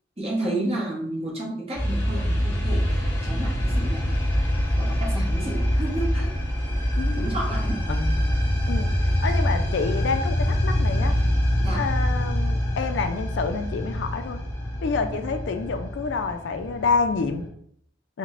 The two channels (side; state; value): both; normal; correlation 0.72